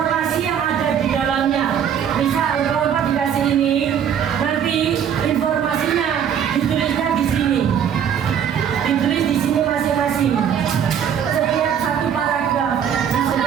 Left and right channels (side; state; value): left; quieter; 8.6 dB